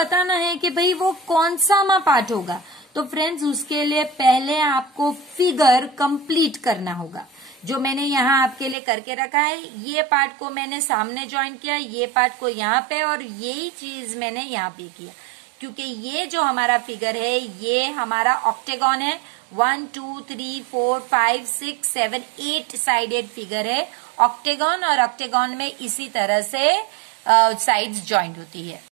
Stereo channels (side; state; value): left; drops out; at 8.8 s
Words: है कि भाई वो कौन सा पार्ट होगा। तो फ्रेंड्स उसके लिए पहले आपको फिगर कंप्लीट करना होगा। जो मैंने यहाँ आपके लिए करके रखा है, ये पार्ट को मैंने सामने ज्वाइन किया, ये पार्ट को यहाँ पे, और यही चीज मैंने यहाँ पे किया, क्योंकि ये जो हमारा फिगर है ये हमारा ऑक्टेगॉन है। 1 2 3 4 5 6 7 8 साइडेड फिगर है ऑक्टेगॉन, और ऑक्टेगॉन में इसी तरह से साइड्स ज्वाइंट होती है।